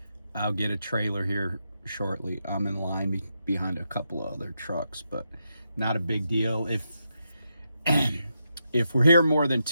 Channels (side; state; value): both; inverted; correlation -0.84